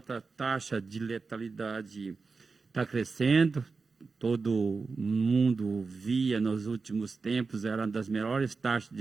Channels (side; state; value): left; quieter; 4.4 dB